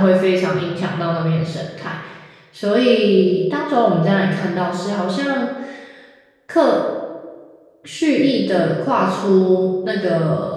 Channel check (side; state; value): both; identical; correlation 1.00